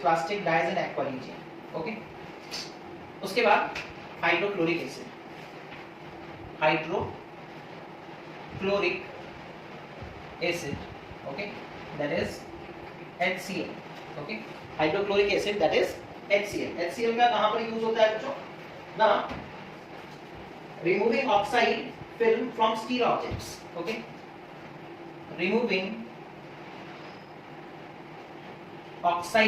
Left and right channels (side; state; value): both; identical; correlation 1.00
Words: dyes and aqua regia. Okay, उसके बाद hydrochloric acid, hydrochloric acid. Okay, that is HCl। Okay, hydrochloric acid that is HCl। HCl का कहां पर यूज होता है बच्चों ना, removing oxide film from steel objects. Okay, removing